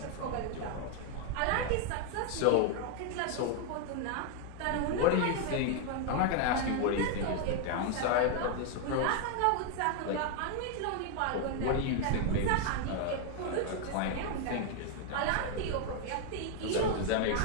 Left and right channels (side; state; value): both; different; correlation 0.00